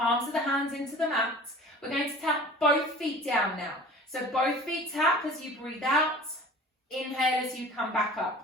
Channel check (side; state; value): both; normal; correlation 0.42